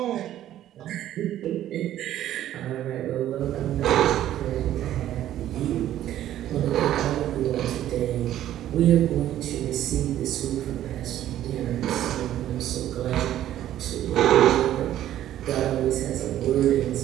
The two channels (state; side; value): quieter; left; 12.4 dB